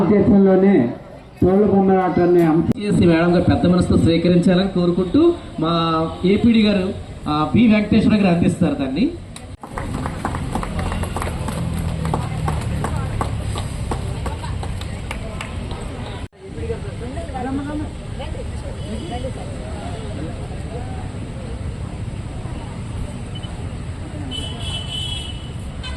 తోలు బొమ్మలాటాన్ని మేడం గారు పెద్ద మనసుతో స్వీకరించాలని కోరుకుంటూ మా ఏపీడీ గారు బి వెంకటేశ్వర గారు అందిస్తారు దాన్ని.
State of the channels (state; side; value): identical; both; correlation 1.00